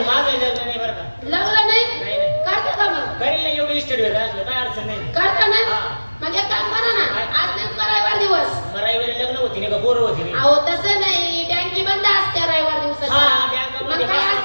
माझं लग्न नाही बरं का लग्न नाही नाही. करता का मग करील ना एवढी इस्टेट भेट असलं काय अडचण नाही करता ना हा. मग एक काम करा ना, आज नेमका रविवार दिवस. रविवारी लग्न होती नाही का पोरं होती नाही? अहो तसं नाही, बँकी बंद असते रविवार दिवसाची. हा, बँक मग मध्ये काय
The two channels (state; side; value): inverted; both; correlation -1.00